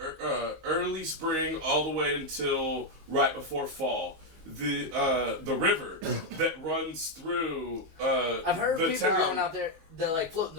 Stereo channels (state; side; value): late; left; 19 ms